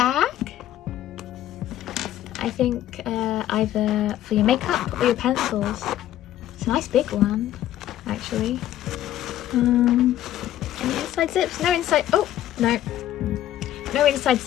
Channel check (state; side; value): quieter; right; 12.6 dB